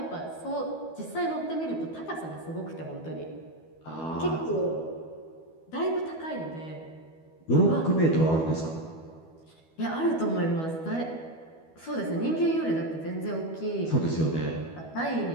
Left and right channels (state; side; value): late; right; 12 ms